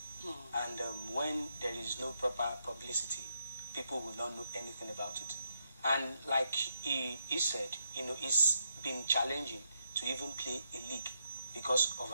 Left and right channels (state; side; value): inverted; both; correlation -0.79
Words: and when there is no proper publicity, people will not know anything about it. And like he said, it's been challenging to even play a league because of